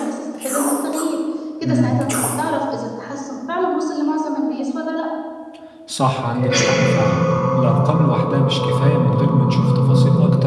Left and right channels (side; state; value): both; identical; correlation 1.00